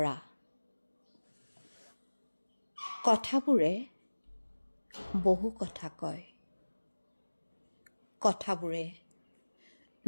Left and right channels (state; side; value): inverted; both; correlation -1.00